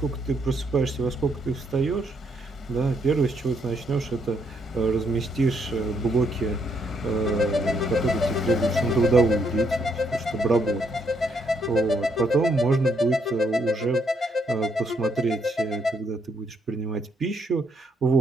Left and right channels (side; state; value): both; normal; correlation 0.73